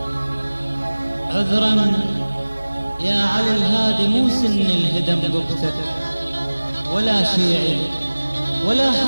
عذرا يا علي الهادي، مو سن الهدم قبتك ولا شيعي ولا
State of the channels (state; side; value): inverted; both; correlation -1.00